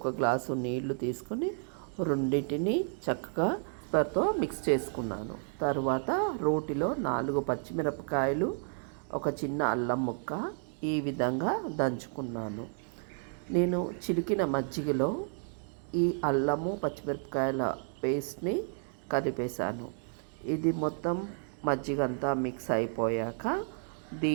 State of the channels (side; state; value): left; silent; 56 dB below the other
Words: గ్లాసు నీళ్లు తీసుకొని రెండింటిని చక్కగా తో మిక్స్ చేసుకున్నాను. తర్వాత రోటిలో 4 పచ్చిమిరపకాయలు, ఒక చిన్న అల్లం ముక్క ఈ విధంగా దంచుకున్నాను. నేను చిలికిన మజ్జిగలో ఈ అల్లము పచ్చిమిరపకాయల పేస్ట్ని కలిపేశాను. ఇది మొత్తం మజ్జిగంతా మిక్స్ అయిపోయాక